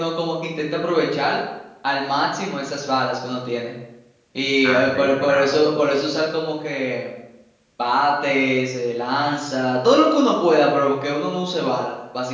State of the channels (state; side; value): identical; both; correlation 1.00